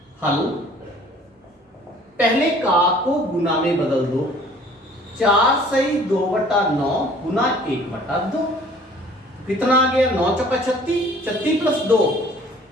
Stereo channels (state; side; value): normal; both; correlation 0.52